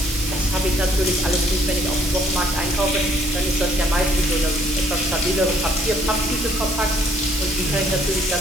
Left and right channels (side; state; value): right; noise; hiss, 8 dB below the sound